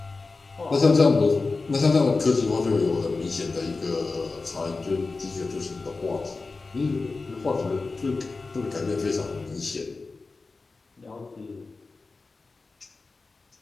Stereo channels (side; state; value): right; quieter; 3.9 dB